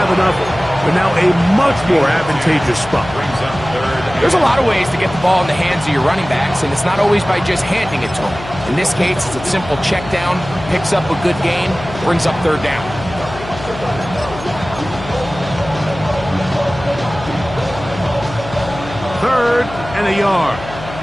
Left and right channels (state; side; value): noise; left; hum, 13 dB below the sound